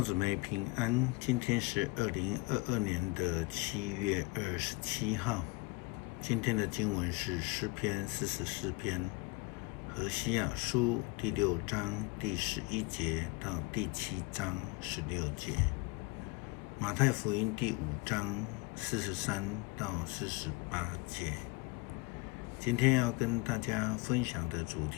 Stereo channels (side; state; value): right; quieter; 25.2 dB